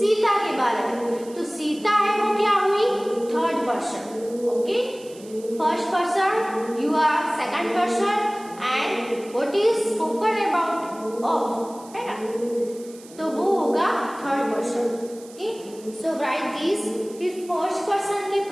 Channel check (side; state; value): right; noise; hiss, 21 dB below the sound